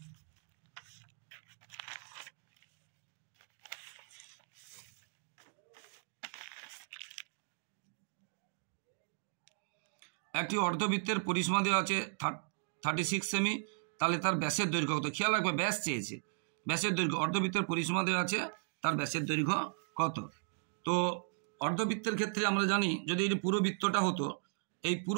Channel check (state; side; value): silent; left; digital silence